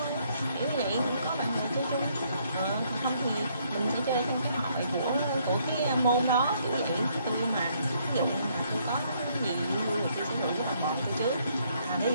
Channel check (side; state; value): both; inverted; correlation -0.69